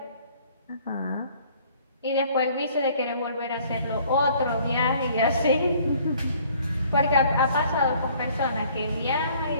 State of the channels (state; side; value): inverted; both; correlation -0.57